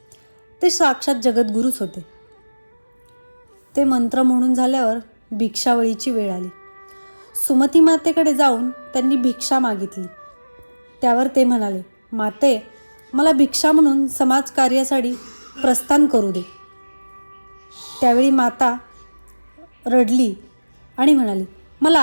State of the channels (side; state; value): both; inverted; correlation -1.00